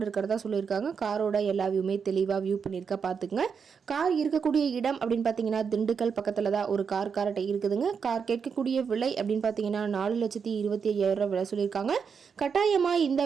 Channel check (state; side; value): quieter; left; 6.3 dB